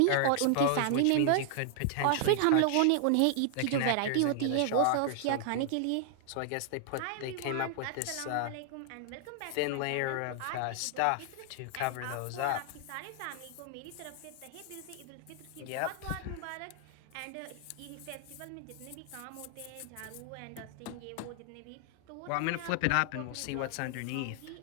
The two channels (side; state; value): both; different; correlation 0.00